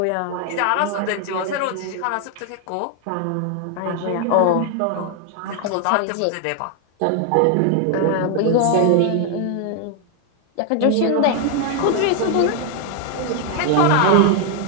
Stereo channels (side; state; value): both; different; correlation 0.00